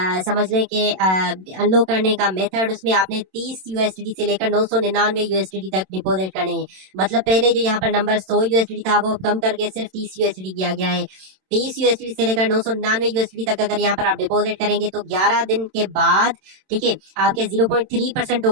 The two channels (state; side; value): late; left; 27 ms